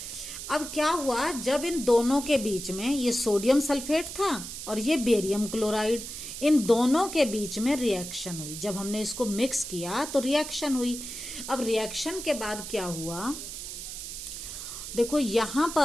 अब क्या हुआ, जब इन दोनों के बीच में, ये सोडियम सल्फेट था और ये बेरियम क्लोराइड, इन दोनों के बीच में रिएक्शन हुई. जब हमने इसको मिक्स किया तो रिएक्शन हुई. अब रिएक्शन के बाद क्या हुआ? देखो, यहां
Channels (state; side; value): noise; right; hiss, 8 dB below the sound